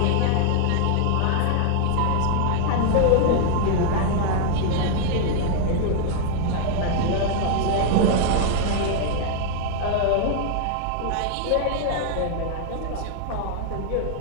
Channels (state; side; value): different; both; correlation 0.00